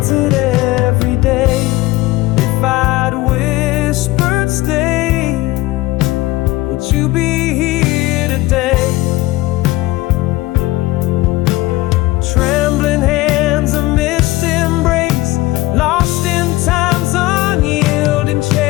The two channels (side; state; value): right; quieter; 19.2 dB